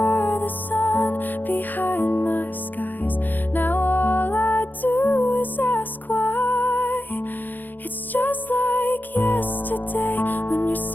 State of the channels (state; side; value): late; right; 0.087 ms